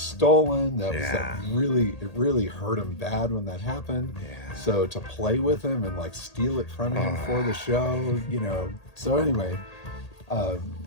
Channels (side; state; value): right; late; 1.8 ms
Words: That really hurt him bad when that happened. Yeah. So to play with him and like steal it from him for the show, So anyway,